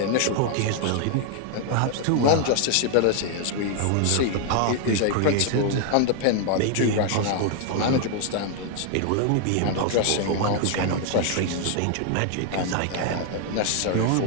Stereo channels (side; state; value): both; different; correlation 0.00